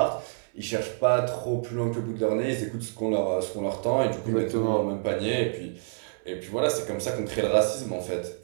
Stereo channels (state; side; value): silent; left; 60 dB below the other